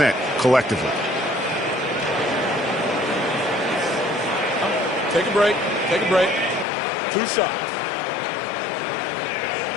collectively. Take a break. Take a break. 2 shots.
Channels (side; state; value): right; drops out; at 6.7 s